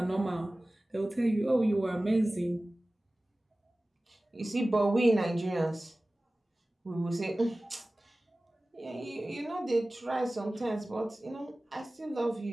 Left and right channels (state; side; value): normal; both; correlation 0.97